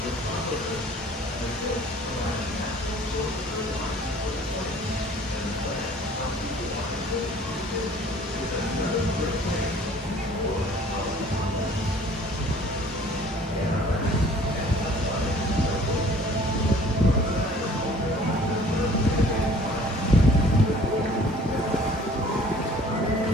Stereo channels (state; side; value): normal; both; correlation 0.52